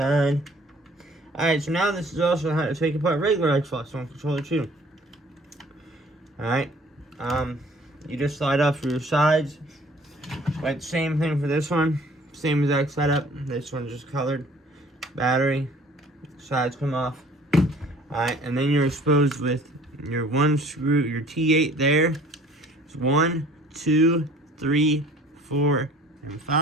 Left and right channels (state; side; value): normal; both; correlation 0.53